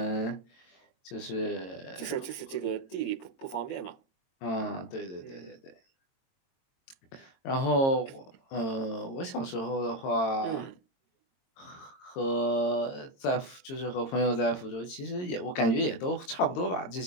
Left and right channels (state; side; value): late; right; 22 ms